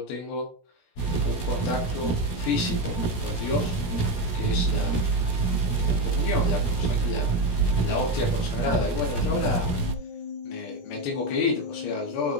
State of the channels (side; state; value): right; late; 17 ms